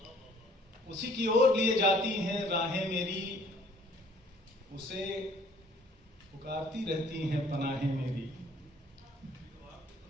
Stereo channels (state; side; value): normal; both; correlation 0.57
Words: उसी की ओर लिए जाती हैं राहें मेरी, उसे पुकारती रहती हैं पनाहें मेरी।